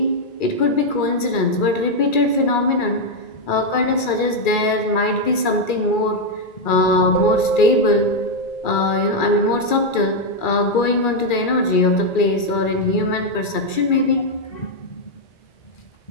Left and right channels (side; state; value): right; late; 2.3 ms